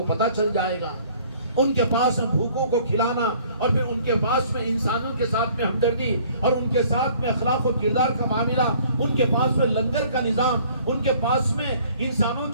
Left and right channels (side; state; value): both; inverted; correlation -0.56